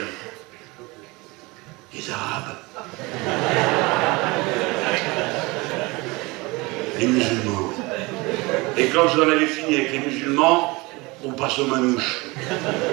Les Arabes. Les musulmans. Et quand vous en avez fini avec les musulmans, on passe aux manouches.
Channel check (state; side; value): quieter; left; 24.3 dB